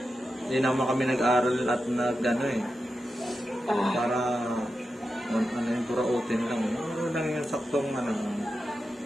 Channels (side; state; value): both; normal; correlation 0.90